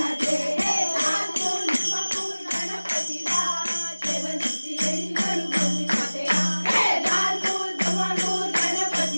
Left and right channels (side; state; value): both; inverted; correlation -1.00